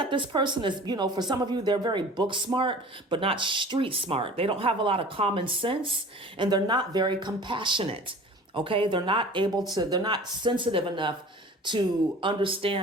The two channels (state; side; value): normal; both; correlation 0.42